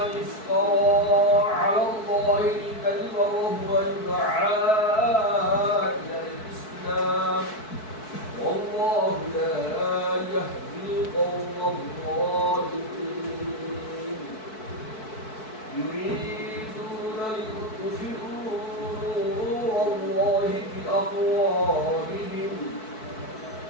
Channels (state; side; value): late; right; 4.6 ms